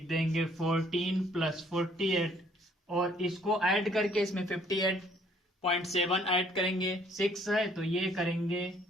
देंगे 14 प्लस 48, और इसको ऐड करके इसमें 58.7 ऐड करेंगे, 6 है तो ये करेंगे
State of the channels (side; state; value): both; normal; correlation 0.61